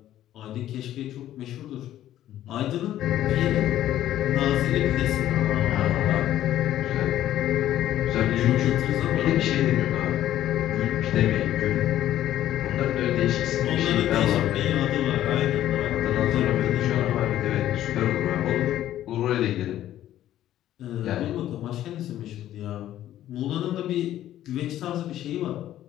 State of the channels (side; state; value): right; quieter; 12.6 dB